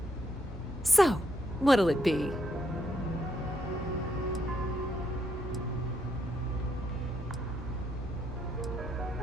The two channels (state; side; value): normal; both; correlation 0.76